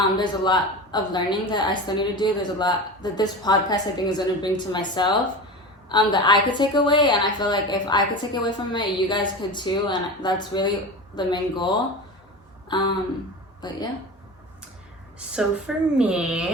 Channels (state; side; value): normal; both; correlation 0.29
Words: There's a lot of learning that I still need to do. There's a lot that this podcast I think is going to bring to myself, that I could take away, and I feel like if I could take away from it, you guys could too, and that's really the main goal. But yeah. So for